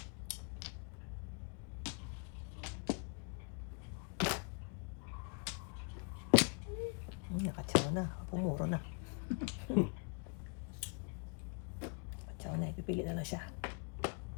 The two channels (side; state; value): right; quieter; 38.1 dB